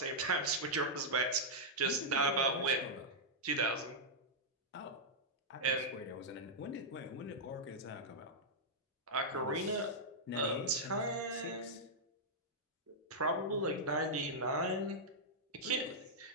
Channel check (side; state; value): both; normal; correlation -0.08